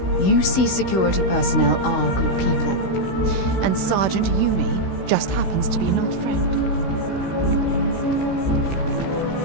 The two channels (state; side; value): late; right; 16 ms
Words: UC security personnel are good people. And Sergeant Yumi just happens to be an old friend.